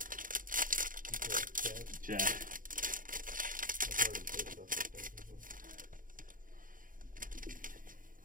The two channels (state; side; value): late; left; 0.40 ms